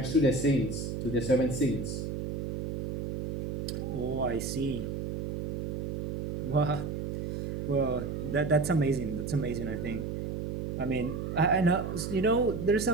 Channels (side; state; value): right; noise; hum, 4 dB below the sound